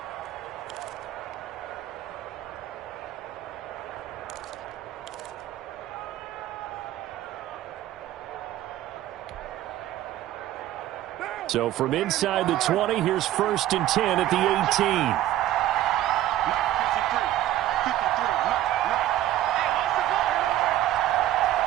So from inside the 20, here's 1st and 10 at the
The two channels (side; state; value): left; quieter; 13.5 dB